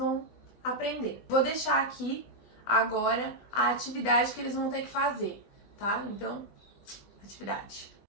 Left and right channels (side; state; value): right; late; 20 ms